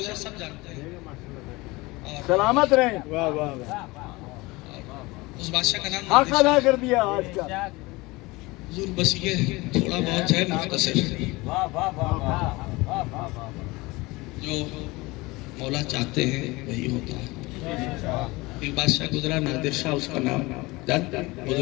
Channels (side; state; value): right; quieter; 22.5 dB